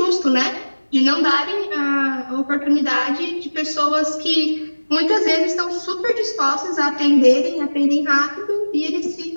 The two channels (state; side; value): inverted; both; correlation -1.00